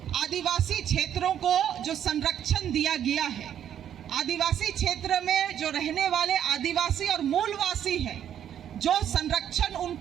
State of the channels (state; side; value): quieter; left; 9.9 dB